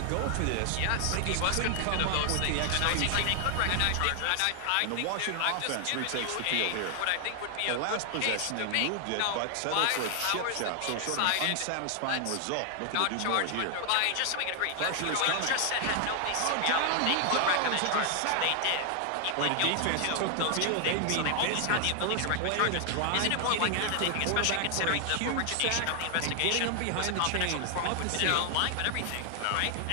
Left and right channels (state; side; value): different; both; correlation 0.00